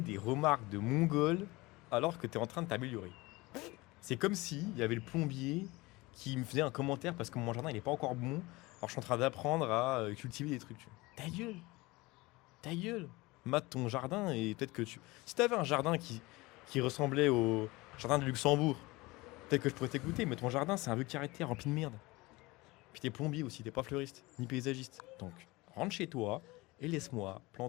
des remarques de mongols alors que tu es en train de t'améliorer? C'est comme si il y avait le plombier qui me faisait un commentaire parce que mon jardin il est pas encore bon, alors je suis en train d'apprendre à cultiver des trucs. Tu vois. Ta gueule, mate ton jardin et peut-être que tu... Si tu avais un jardin qui ressemblait au jardin de Luxembourg, peut-être que je pourrais t'écouter, mais ton jardin c'est un vieux carré de terre rempli de merde. Puis t'es plombier aussi, t'es pas fleuriste, ni paysagiste. Donc rentre chez toi et laisse-moi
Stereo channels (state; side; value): quieter; right; 22.2 dB